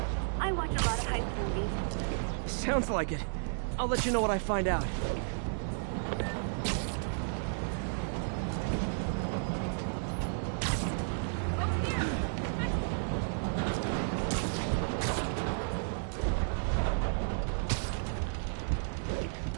I watch a lot of heist movies. Sounds like it. I'll let you know what I find out.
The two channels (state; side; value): silent; left; digital silence